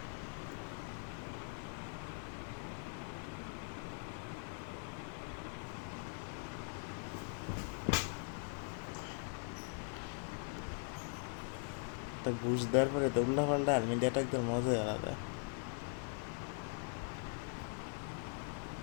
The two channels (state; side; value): silent; right; 50 dB below the other